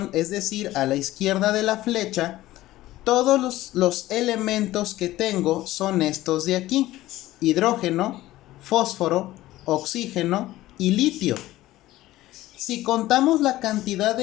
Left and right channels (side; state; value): right; quieter; 16.1 dB